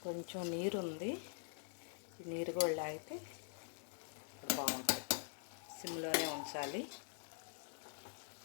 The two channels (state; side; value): silent; right; digital silence